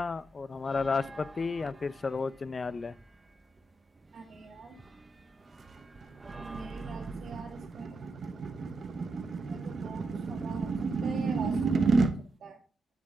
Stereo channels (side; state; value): both; normal; correlation 0.85